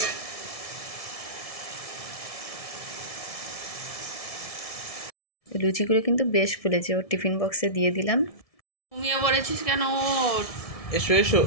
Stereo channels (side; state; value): right; late; 1.7 ms